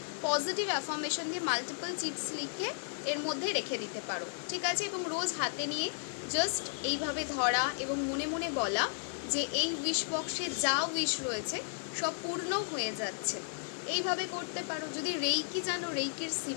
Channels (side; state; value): right; silent; digital silence